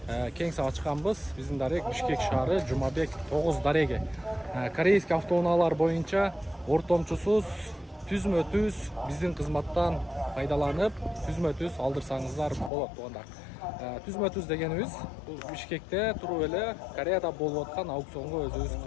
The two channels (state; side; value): drops out; right; at 12.7 s